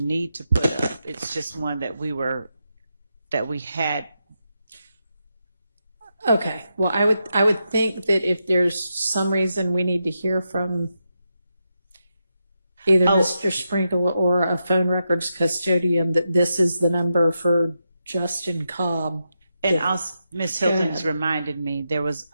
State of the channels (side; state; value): both; inverted; correlation -0.86